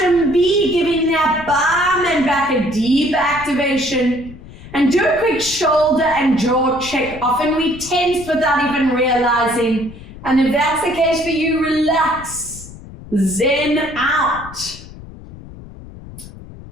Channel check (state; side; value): noise; left; rumble, 16 dB below the sound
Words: B, giving that bum and back a deep activation. And do a quick shoulder and jaw check. Often we tense without even realizing. And if that's the case for you, relax. Zen out.